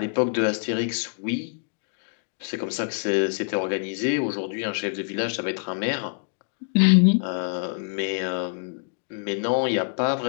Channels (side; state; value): right; silent; digital silence